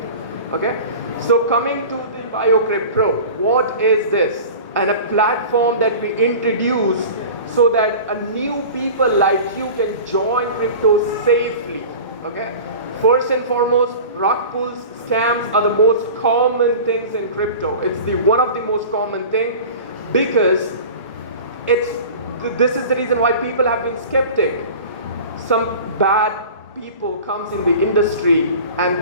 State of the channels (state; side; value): inverted; both; correlation -0.37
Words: Okay, so coming to the Biokripto Pro, what is this? And a platform that we introduce so that a new people like you can join crypto safely. Okay, first and foremost, rug pulls, scams are the most common things in crypto. It's one of the most common thing, because this is the reason why people have been skeptic. Some bad people comes in the industry and